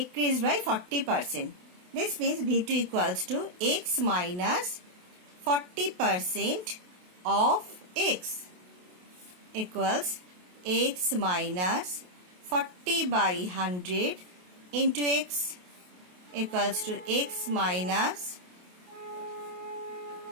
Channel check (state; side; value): late; left; 28 ms